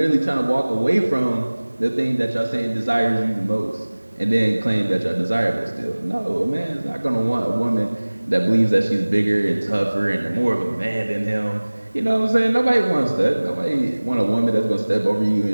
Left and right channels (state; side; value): inverted; both; correlation -1.00